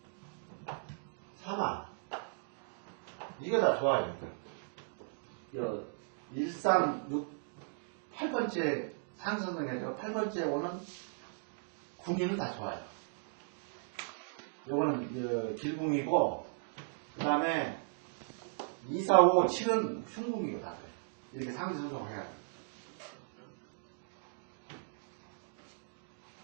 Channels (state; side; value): silent; left; digital silence